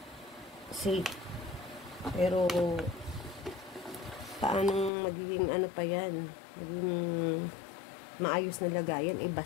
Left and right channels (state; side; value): drops out; right; at 4.9 s